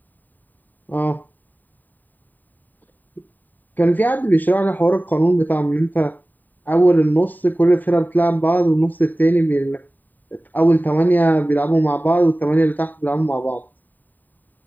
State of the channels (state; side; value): late; right; 0.087 ms